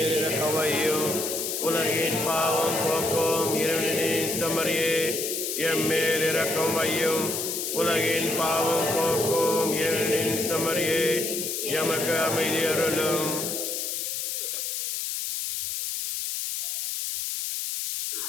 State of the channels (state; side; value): noise; left; hiss, 2 dB below the sound